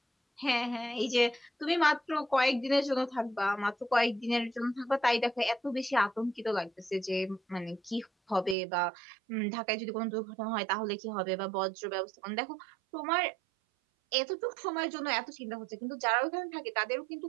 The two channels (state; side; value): drops out; left; at 8.6 s